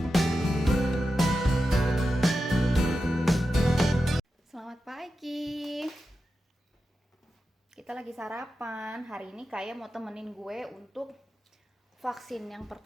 Selamat pagi. Kita lagi sarapan. Hari ini Kaya mau temenin gue untuk vaksin yang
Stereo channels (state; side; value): normal; both; correlation 0.91